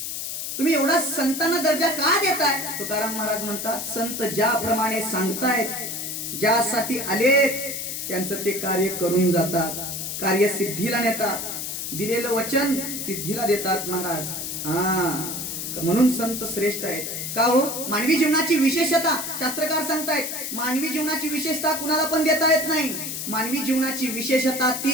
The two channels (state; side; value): noise; left; hiss, 5 dB below the sound